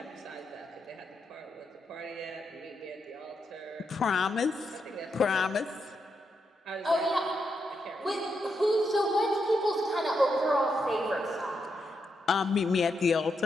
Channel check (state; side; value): normal; both; correlation 0.83